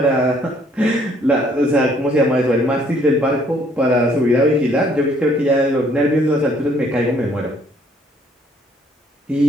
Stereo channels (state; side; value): normal; both; correlation 0.64